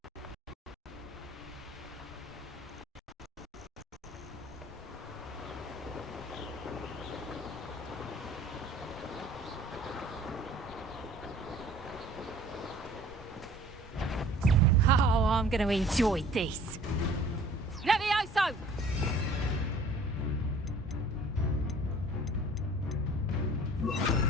Oh, I'm going to enjoy this. Levioso!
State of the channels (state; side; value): normal; both; correlation 0.51